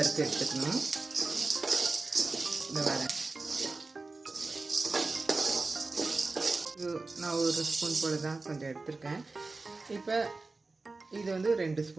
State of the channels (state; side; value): quieter; left; 3.6 dB